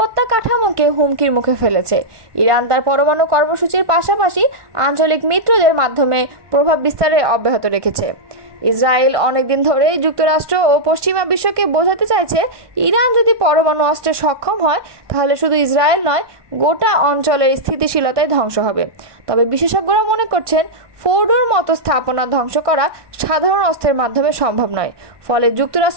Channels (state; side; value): late; left; 1.2 ms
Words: কাঠামোকে হুমকির মুখে ফেলেছে। ইরান তার পরমাণু কর্মসূচির পাশাপাশি আঞ্চলিক মিত্রদের মাধ্যমে প্রভাব বিস্তারে অব্যাহত রেখেছে। ইসরায়েল অনেকদিন ধরেই যুক্তরাষ্ট্র ও পশ্চিমা বিশ্বকে বোঝাতে চাইছে, ইরান যদি পরমাণু অস্ত্রে সক্ষম হয় তাহলে শুধু ইসরায়েল নয়, গোটা অঞ্চলের স্থিতিশীলতায় ধ্বংস হবে। তবে বিশেষজ্ঞরা মনে করছেন, ফোর্ডোর মতো স্থাপনা ধ্বংস করা সাধারণ অস্ত্রের মাধ্যমে সম্ভব নয়, ফলে